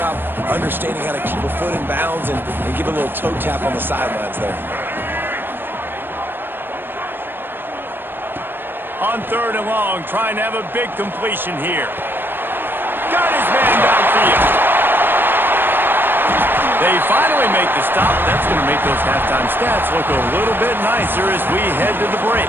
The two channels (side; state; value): left; late; 0.097 ms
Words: understanding how to keep a foot in bounds and give a little toe tap on the sidelines there. On 3rd and long, trying to have a big completion here. Got his man downfield. They finally make the stop. That's going to make those halftime stats look a little bit nicer as we head to the